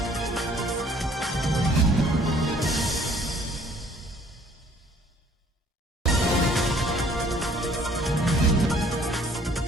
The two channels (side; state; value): both; normal; correlation 0.58